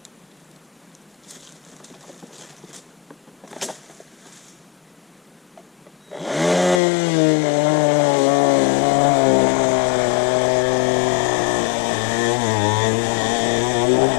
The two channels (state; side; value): drops out; right; at 6.8 s